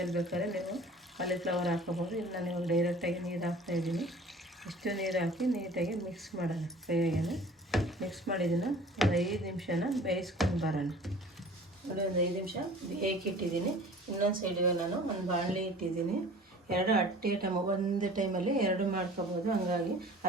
ಬೇಕಾದ್ರೆ ನೀವು ಕಾಲಿಫ್ಲವರ್ ಹಾಕೋಬೋದು. ಇಲ್ಲ ನೀವು ಡೈರೆಕ್ಟಾಗಿ ನೀರು ಹಾಕ್ತಾಯಿದ್ದೀನಿ. ಇಷ್ಟು ನೀರು ಹಾಕಿ ನೀಟಾಗಿ ಮಿಕ್ಸ್ ಮಾಡೋಣ. ಕೈಯಾಗೆ ಮಿಕ್ಸ್ ಮಾಡಿದ್ದನ್ನು ಒಂದು 5 ನಿಮಿಷನ ಬೇಯಿಸ್ಕೊಂಡು ಬರೋಣ. ನೋಡಿ, ಒಂದು 5 ನಿಮಿಷ ಬೇಯಕ್ಕಿಟ್ಟಿದ್ದೀನಿ. ಇನ್ನೊಂದು ಸೈಡಿಗೆ ನಾನು ಒಂದು ಬಾಣಲಿ ಇಟ್ಟಿದ್ದೀನಿ. ಎರಡು ಒಂದು ಟೈಮಲ್ಲಿ ಎರಡು ಮಾಡ್ಕೊಬೋದು. ಹಂಗಾಗಿ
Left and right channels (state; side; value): normal; both; correlation 0.46